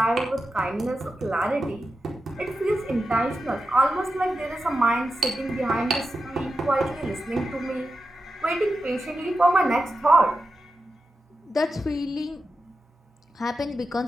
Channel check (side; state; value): both; normal; correlation 0.90